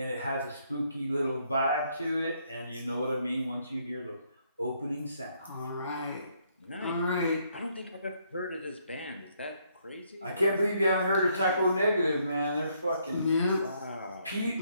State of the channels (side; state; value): both; inverted; correlation -0.71